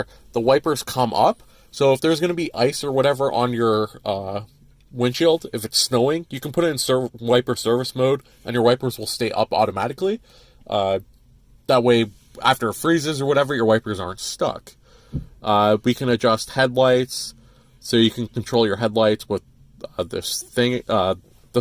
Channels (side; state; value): both; identical; correlation 1.00